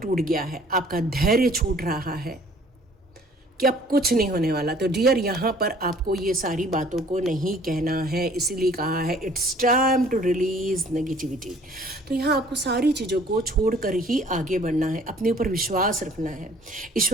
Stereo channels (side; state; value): both; normal; correlation 0.55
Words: गया है, आपका धैर्य छूट रहा है कि अब कुछ नहीं होने वाला, तो डियर यहाँ पर आपको ये सारी बातों को नहीं कहना है। इसीलिए कहा है it's time to release negativity. तो यहाँ आपको सारी चीज़ों को छोड़कर ही आगे बढ़ना है, अपने ऊपर विश्वास रखना है,